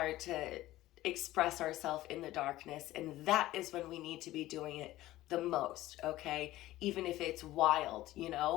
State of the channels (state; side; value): quieter; right; 16.0 dB